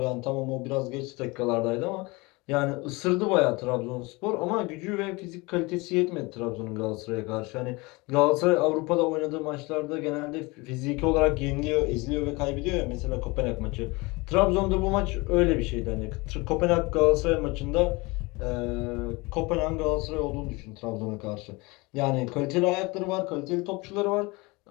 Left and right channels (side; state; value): right; quieter; 24.8 dB